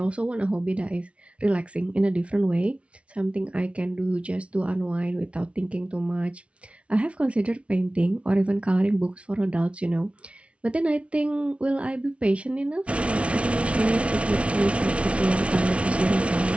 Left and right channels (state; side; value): late; left; 0.061 ms